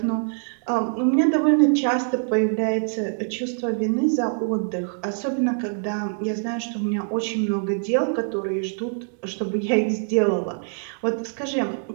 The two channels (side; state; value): left; silent; 63 dB below the other